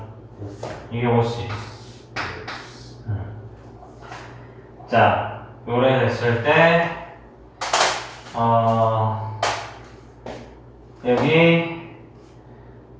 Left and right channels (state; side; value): identical; both; correlation 1.00